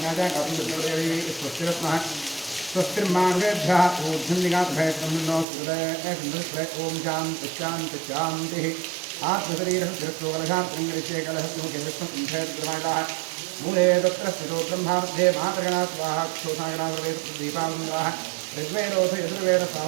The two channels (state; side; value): drops out; left; at 5.5 s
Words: गात्मज्योतिर्देवी स्वस्तिरत्नः स्वस्तिर्मार्गेभ्यः ऊर्ध्वनिगातभयब्रह्मणो सुहृदय ओम शान्ति शान्ति शान्तिः। आत्मशरीरः तिरस्योकलशात्रिङ्गरिषे कलहस्मुखे विष्णुकुण्ठेद्रमाणाः मूले तत्र स्थितो ब्रह्मामध्ये मातृगणा स्वाहा क्षोसागणावेदीपावृन्दाः ऋग्वेदोऽथ